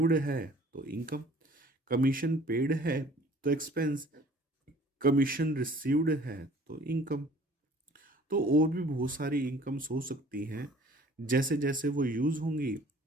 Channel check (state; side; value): normal; both; correlation 0.52